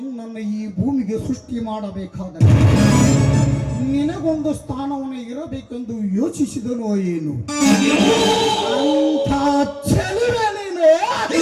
ಈ ಭೂಮಿಗೆ ಸೃಷ್ಟಿ ಮಾಡಬೇಕಾದರೆ ನಿನಗೊಂದು ಸ್ಥಾನವನ್ನು ಇರಬೇಕೆಂದು ಯೋಚಿಸಿದನೋ ಏನು ಅಂತ ಚೆಲುವೆ ನೀನು.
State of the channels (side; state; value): both; identical; correlation 1.00